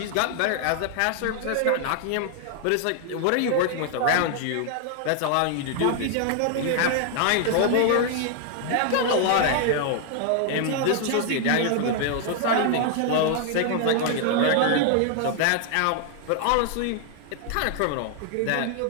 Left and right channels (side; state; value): both; different; correlation 0.00